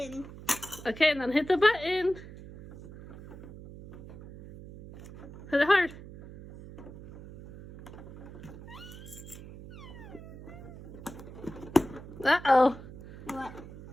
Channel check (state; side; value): noise; right; hum, 15 dB below the sound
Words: Okay, and then hit the button. Hit it hard. Uh-oh. What?